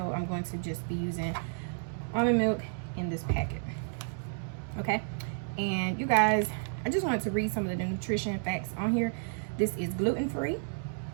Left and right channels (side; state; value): left; silent; digital silence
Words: I'm going to just be using almond milk in this packet. Okay, and you guys, I just wanted to read some of the nutrition facts on here. This is gluten-free,